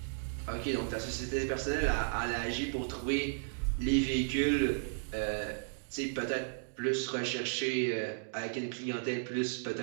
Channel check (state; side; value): silent; left; digital silence